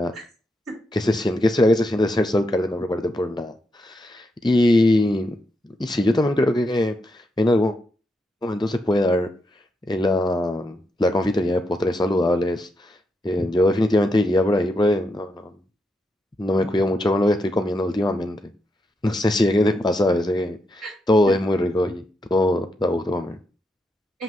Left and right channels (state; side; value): normal; both; correlation 0.82